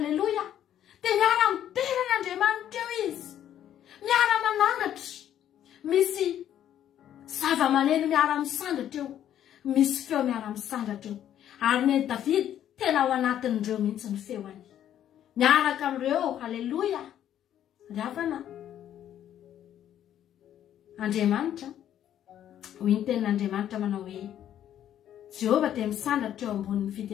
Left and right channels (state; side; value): quieter; right; 10.8 dB